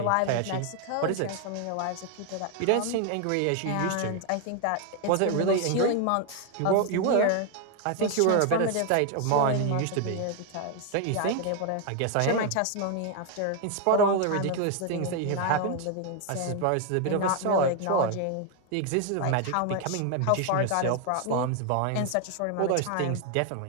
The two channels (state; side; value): different; both; correlation 0.01